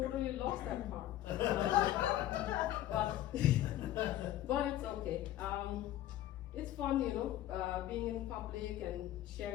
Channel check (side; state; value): right; quieter; 13.3 dB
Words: lost that part. But it's okay. It's fun, being in public and